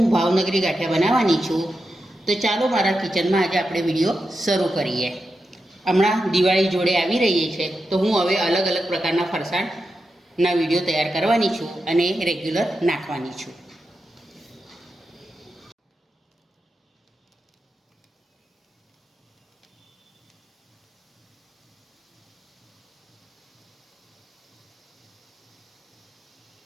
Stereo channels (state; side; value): normal; both; correlation 0.88